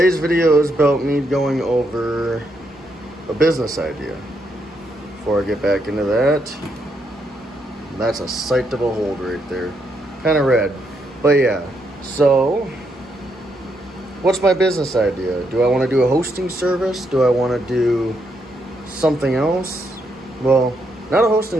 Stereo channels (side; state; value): both; normal; correlation 0.78